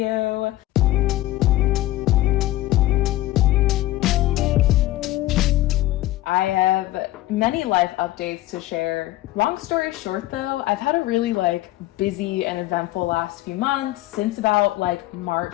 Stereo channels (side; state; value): right; quieter; 16.4 dB